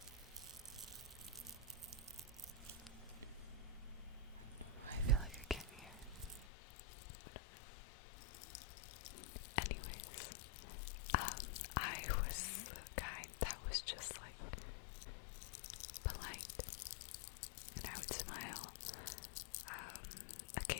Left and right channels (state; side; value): drops out; right; at 6.5 s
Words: I feel like I can't hear. Anyways, I was the guy that was just like polite, and I would smile.